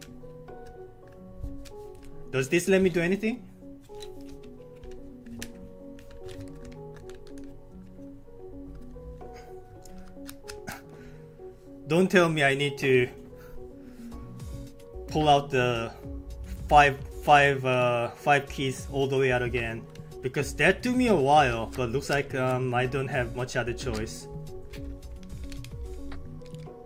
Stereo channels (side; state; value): both; identical; correlation 1.00